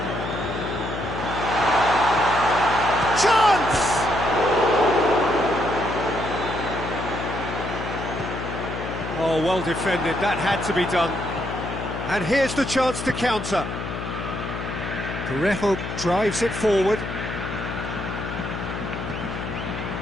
Chance! Oh, well defended, that had to be done. And here's the chance to counter. Parejo drives it forward.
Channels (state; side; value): noise; left; hum, 6 dB below the sound